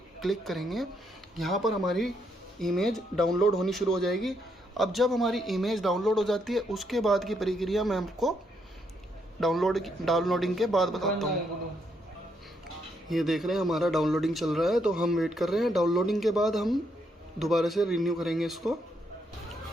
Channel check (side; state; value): both; normal; correlation 0.76